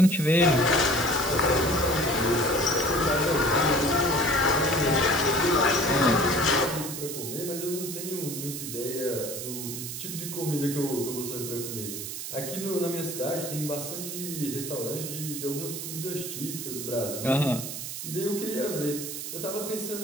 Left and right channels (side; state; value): right; noise; hiss, 7 dB below the sound